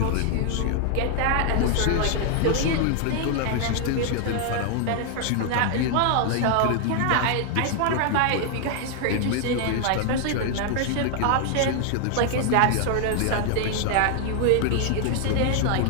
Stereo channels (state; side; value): different; both; correlation 0.00